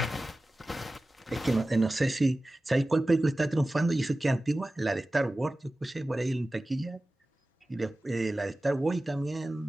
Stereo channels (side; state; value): both; normal; correlation 0.96